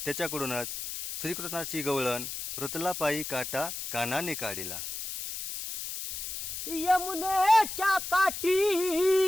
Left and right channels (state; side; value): noise; left; hiss, 6 dB below the sound